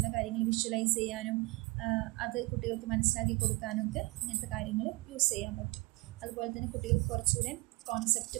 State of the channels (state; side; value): quieter; left; 24.4 dB